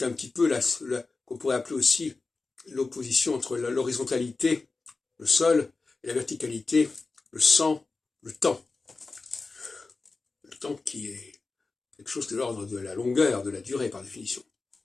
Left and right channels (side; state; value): right; quieter; 3.9 dB